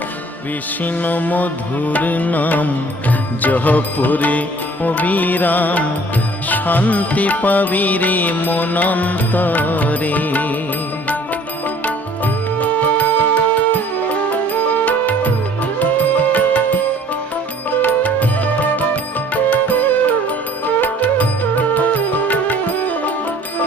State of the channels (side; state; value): both; normal; correlation 0.53